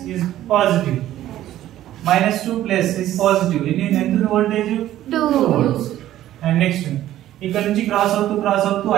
is positive. -2 plus is positive. ఇది ఎంత వోల్టేజ్ 2 వోల్ట్స్. అండ్ నెక్స్ట్ ఇక్కడ నుంచి cross అవుతూ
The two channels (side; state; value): left; quieter; 13.3 dB